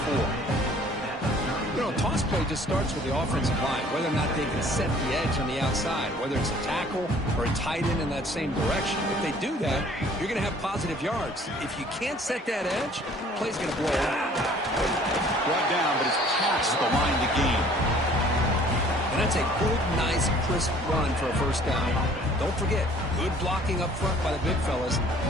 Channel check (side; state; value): both; normal; correlation 0.54